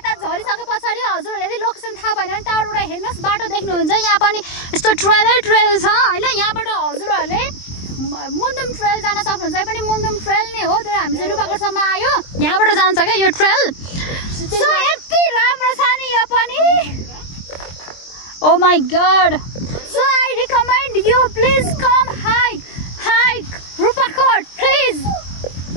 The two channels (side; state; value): right; late; 23 ms